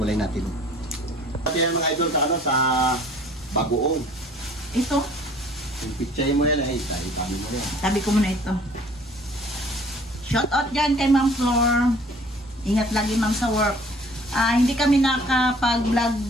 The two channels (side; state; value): both; normal; correlation 0.53